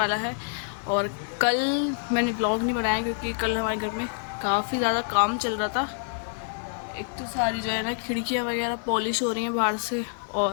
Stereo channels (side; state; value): right; silent; 60 dB below the other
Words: है। और कल मैंने ब्लॉग नहीं बनाया क्योंकि कल हमारे घर में काफ़ी ज़्यादा काम चल रहा था। एक तो सारी जो है ना खिड़कियाँ वगैरह पॉलिश हो रही हैं बाहर से,